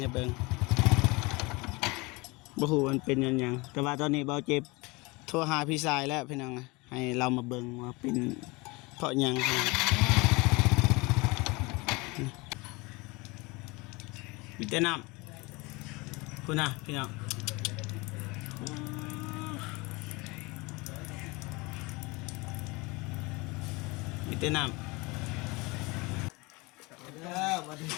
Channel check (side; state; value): right; quieter; 25.1 dB